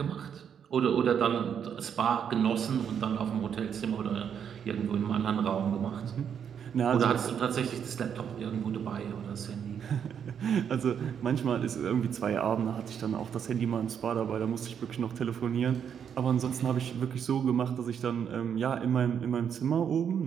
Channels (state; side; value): quieter; left; 8.0 dB